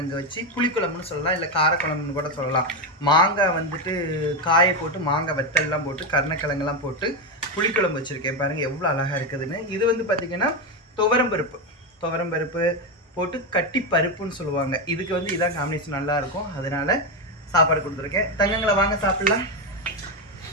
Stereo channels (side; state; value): both; normal; correlation 0.10